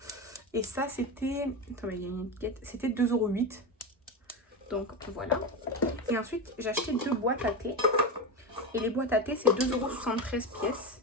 Et ça c'était... Attends, il y a une étiquette. C'était 2,08 €. Donc voilà. Et ensuite j'ai acheté 2 boîtes à thé. Et les boîtes à thé c'est 2,73 € pièce.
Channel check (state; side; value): normal; both; correlation 0.18